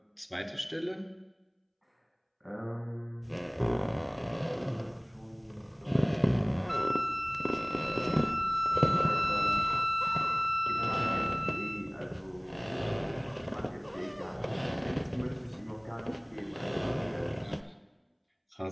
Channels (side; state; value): both; identical; correlation 1.00